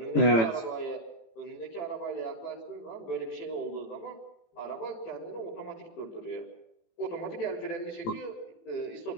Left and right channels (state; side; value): late; right; 18 ms